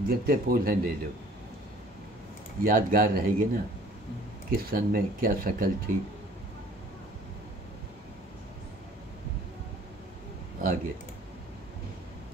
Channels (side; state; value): both; normal; correlation 0.52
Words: जितने पोज हैं ले लो, यादगार रहेगी ना किस सन में क्या शक्ल थी। आगे